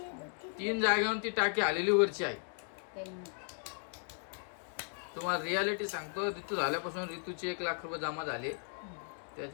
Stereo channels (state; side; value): silent; right; 54 dB below the other